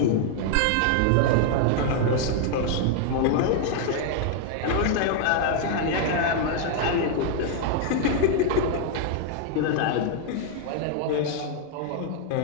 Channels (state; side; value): different; both; correlation 0.00